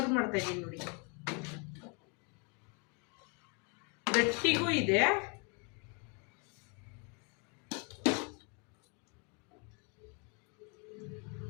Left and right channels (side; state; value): right; quieter; 34.5 dB